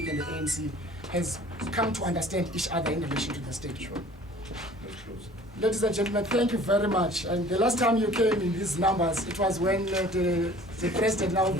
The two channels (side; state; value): both; normal; correlation 0.49